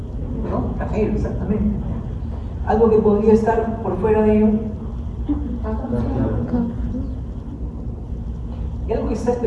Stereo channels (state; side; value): identical; both; correlation 1.00